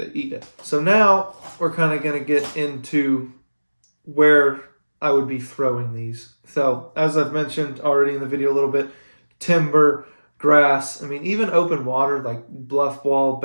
eat it. So now we're kind of going to get into where I would be throwing these. So as I've mentioned already in the video a little bit, timber, grass, I mean, even open water like bluff wall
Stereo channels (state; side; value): inverted; both; correlation -1.00